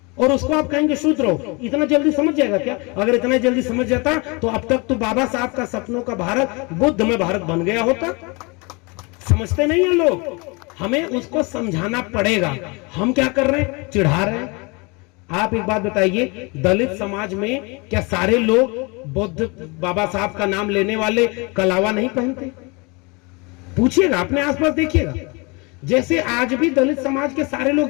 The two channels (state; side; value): quieter; right; 28.6 dB